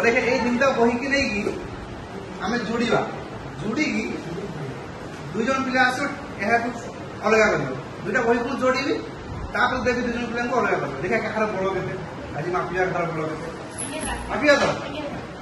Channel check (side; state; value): both; identical; correlation 1.00